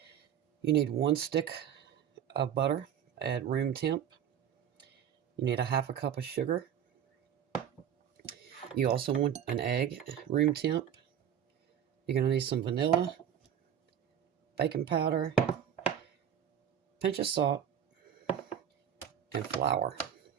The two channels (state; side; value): quieter; left; 9.2 dB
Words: you need 1 stick of butter at room temp. You need a half a cup of sugar. You also want an egg, room temp. You're going to need some vanilla, baking powder, pinch of salt, and flour.